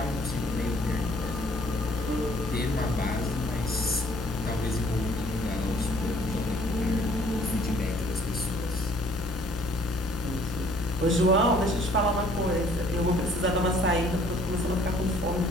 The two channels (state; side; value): normal; both; correlation 0.58